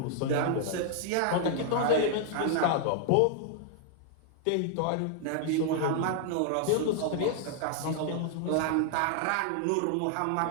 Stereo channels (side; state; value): both; different; correlation -0.01